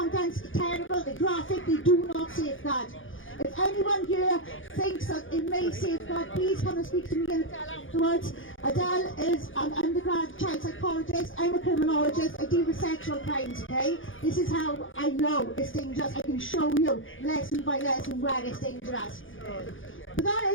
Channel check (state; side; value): late; right; 0.57 ms